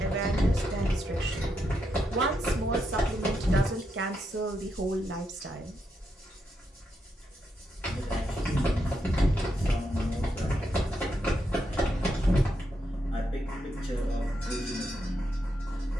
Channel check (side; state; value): both; normal; correlation 0.82